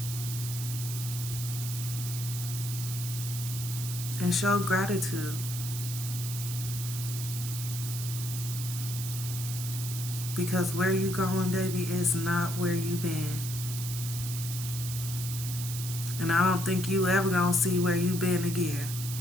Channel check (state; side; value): noise; right; hiss, 7 dB below the sound